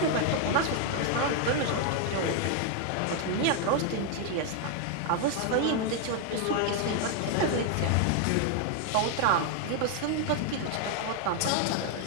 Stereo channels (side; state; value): both; different; correlation 0.00